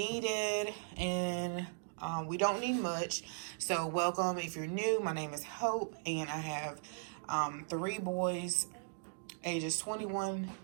and we don't need much. So welcome if you're new. My name is Hope, and I have 3 boys, ages 21,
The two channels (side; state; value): left; silent; digital silence